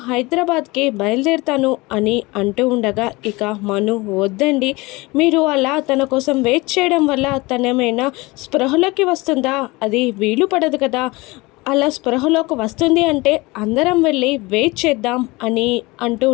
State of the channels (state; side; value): quieter; right; 23.2 dB